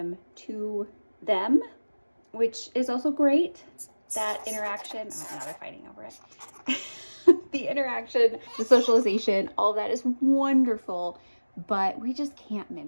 to them, which is also great. That interaction, oh, now they're fighting over it. The interaction, the socialization, all of that is wonderful, but we just can't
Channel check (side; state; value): both; inverted; correlation -1.00